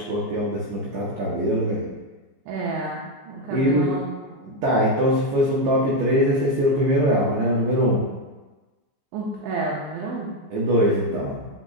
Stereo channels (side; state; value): left; late; 15 ms